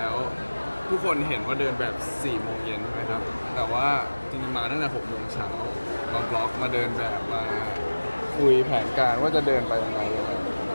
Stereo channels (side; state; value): both; inverted; correlation -1.00